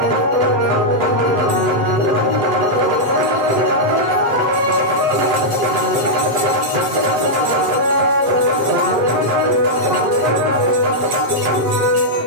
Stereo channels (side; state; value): left; late; 7.8 ms